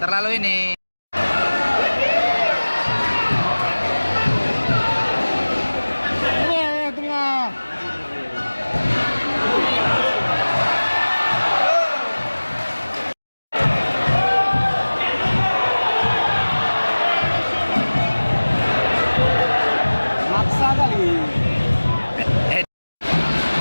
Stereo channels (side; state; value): both; inverted; correlation -1.00